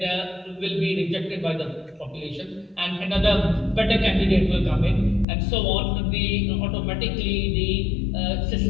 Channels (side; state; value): right; drops out; at 5.2 s